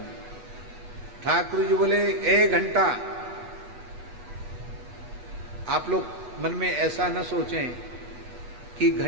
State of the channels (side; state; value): left; late; 8.1 ms